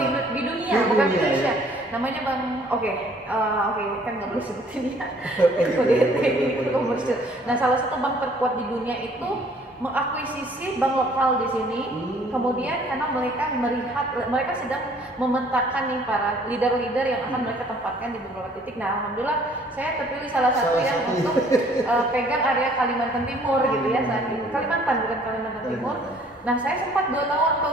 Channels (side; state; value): both; normal; correlation 0.58